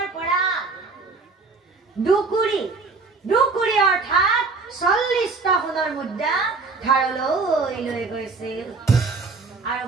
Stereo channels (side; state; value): left; quieter; 4.2 dB